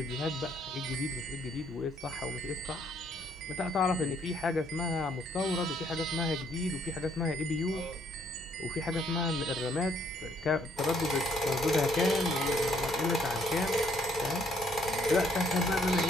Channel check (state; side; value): normal; both; correlation 0.67